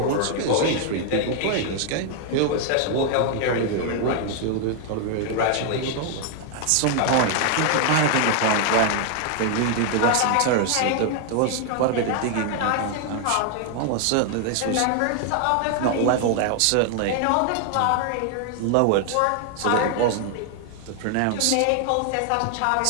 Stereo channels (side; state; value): both; different; correlation 0.00